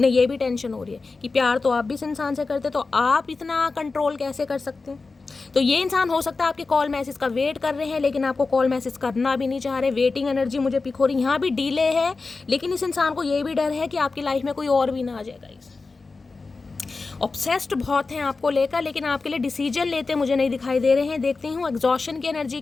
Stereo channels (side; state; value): right; quieter; 4.0 dB